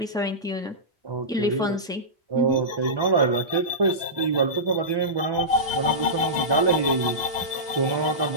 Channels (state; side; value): normal; both; correlation -0.17